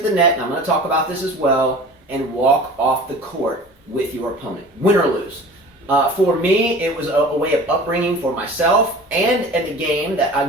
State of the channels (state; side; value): normal; both; correlation 0.41